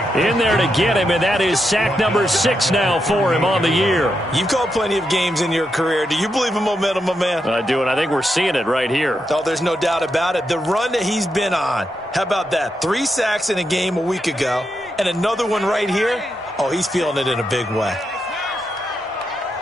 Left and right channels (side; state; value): both; normal; correlation 0.84